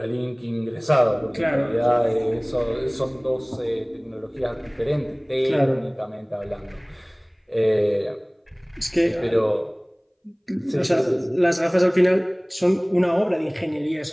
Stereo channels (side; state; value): both; identical; correlation 1.00